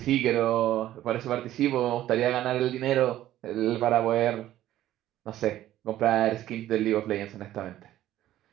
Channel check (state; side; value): quieter; left; 13.5 dB